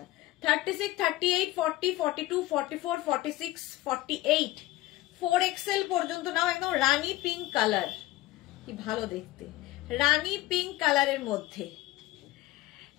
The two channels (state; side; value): quieter; right; 17.4 dB